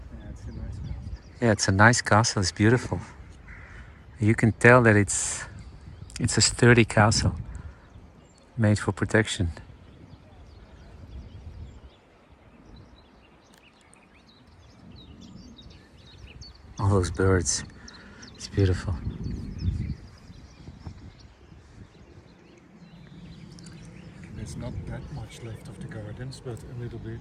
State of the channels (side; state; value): both; identical; correlation 1.00